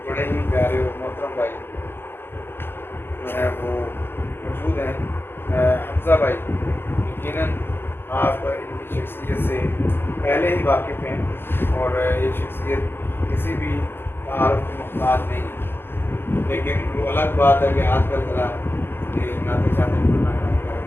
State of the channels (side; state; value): right; late; 0.11 ms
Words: بڑے ہی پیارے اور محترم بھائی جو ہیں وہ موجود ہیں, حمزہ بھائی. یقیناً آپ ان کی شخصیت سے پہلے ہی واقف ہیں اور یہ شخصیت کسی بھی تعارف کی محتاج نہیں ہے. لیکن وہ الگ بات ہے کہ آج کل ذرا یہ نعتیں شاتیں پڑھنا